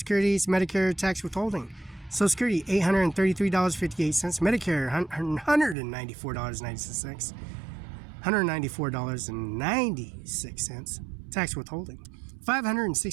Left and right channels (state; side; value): drops out; left; at 5.8 s